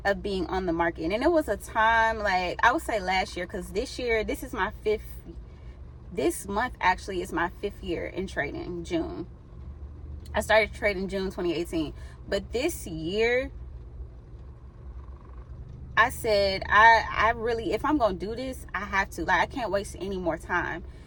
of being on the market. And it was a time, like I would say last year, because this month actually is my 5th year in trading. June, I started trading June 2018, but this year I said, I really, if I'm going to do this, I have to. Like, I can't waste any more time.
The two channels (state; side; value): identical; both; correlation 1.00